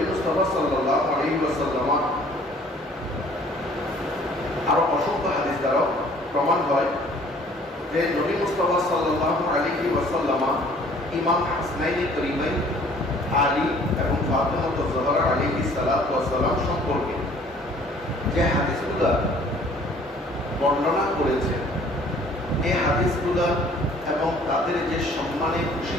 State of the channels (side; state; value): both; normal; correlation 0.55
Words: মুস্তাফা সাল্লাল্লাহু আলাইহি ওয়াসাল্লাম আরো অসংখ্য হাদিস দ্বারাও প্রমাণ হয় যে নবী মুস্তাফা সাল্লাল্লাহু আলাইহি ওয়াসাল্লাম ইমাম হাসনাইন করিমাইন আলী এবং ফাতেমা জোহরা আলাইহিস সালাতু ওয়াস সালাম সম্পর্কে যে হাদিসগুলো বর্ণনা করেছেন, এই হাদিসগুলো এবং তাদের যে সম্মানে